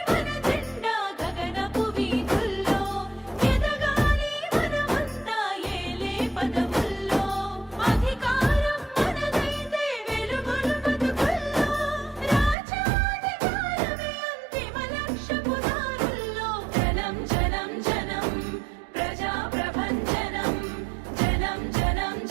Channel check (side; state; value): left; drops out; at 12.6 s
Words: మన జెండా గగనపు వీధుల్లో ఎదగాలి మనమంతా ఏలే పదవుల్లో అధికారం మనదైతే వెలుగులు బతుకుల్లో రాజ్యాధికారమే అంతిమ లక్ష్యపు దారుల్లో జనం జనం జనం ప్రజా ప్రభంజనం జనం జనం